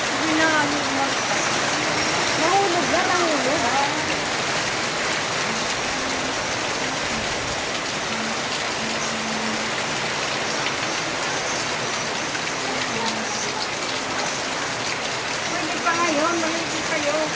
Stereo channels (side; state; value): both; identical; correlation 1.00